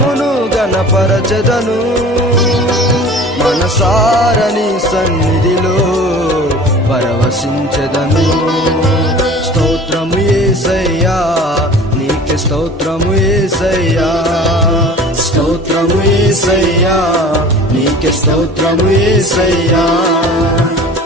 గణపరచెదను, మనసార నీ సన్నిధిలో పరవశించెదను. స్తోత్రము యేసయ్యా నీకే స్తోత్రము యేసయ్యా, స్తోత్రము యేసయ్యా నీకే స్తోత్రము యేసయ్యా.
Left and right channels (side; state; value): both; normal; correlation 0.42